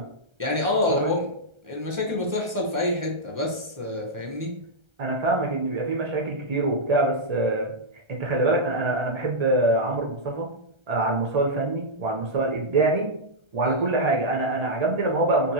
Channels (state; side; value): late; left; 1.3 ms